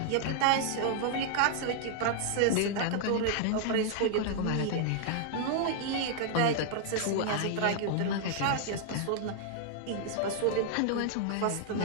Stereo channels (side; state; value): both; different; correlation 0.00